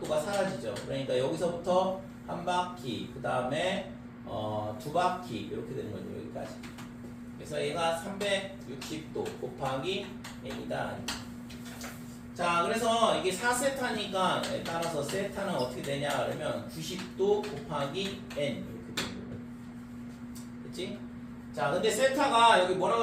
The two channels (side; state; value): both; identical; correlation 1.00